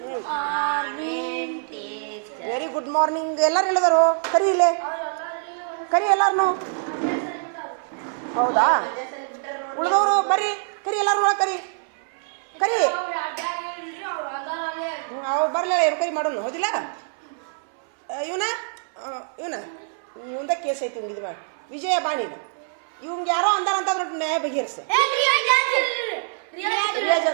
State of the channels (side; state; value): left; silent; 60 dB below the other